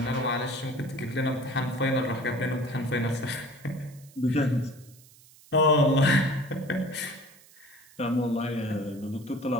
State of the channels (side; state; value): right; noise; hiss, 25 dB below the sound